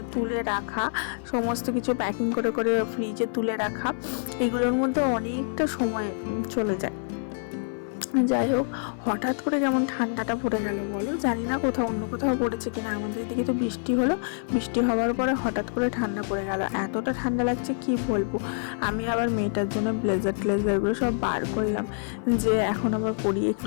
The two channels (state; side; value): silent; right; 58 dB below the other